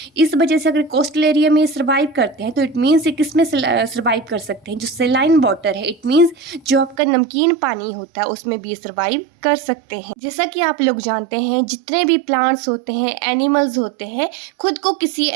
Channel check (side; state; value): left; drops out; at 7.0 s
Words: इस वजह से अगर कोस्टल एरिया में सर्वाइव करते हैं तो इट मीन्स ये किस में सर्वाइव कर सकते हैं, जो सेलाइन वाटर है, इट मीन्स जो आपका नमकीन पानी होता है उसमें भी सर्वाइव कर सकते हैं। जैसा कि आप लोग जानते हैं, जितने भी प्लांट्स होते हैं, एनिमल्स होते हैं, खुद को किसी